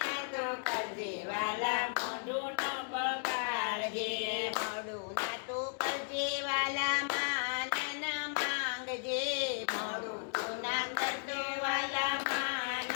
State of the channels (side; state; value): right; silent; 54 dB below the other